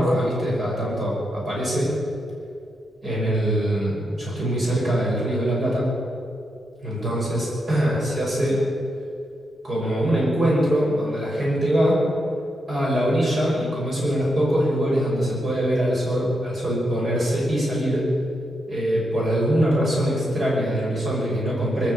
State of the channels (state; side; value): normal; both; correlation 0.83